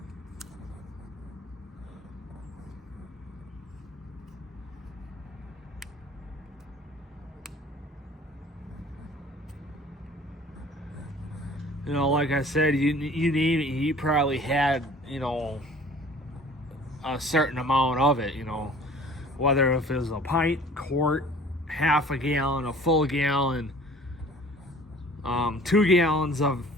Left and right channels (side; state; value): both; normal; correlation 0.48